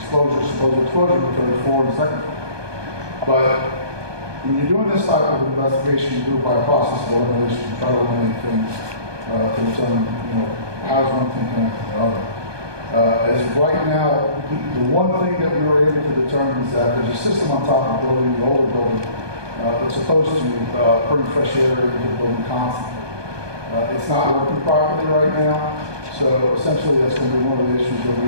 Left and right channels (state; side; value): late; left; 1.2 ms